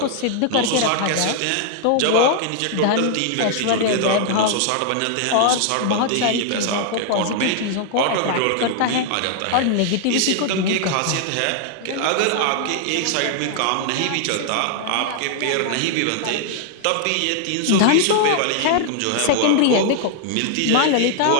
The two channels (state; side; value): different; both; correlation 0.00